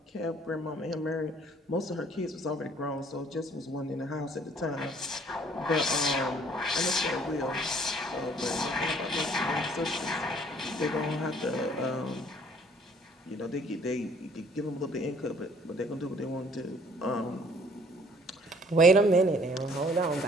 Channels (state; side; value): normal; both; correlation 0.58